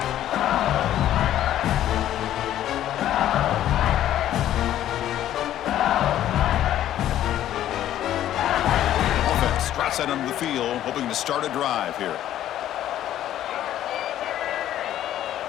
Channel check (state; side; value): quieter; right; 12.2 dB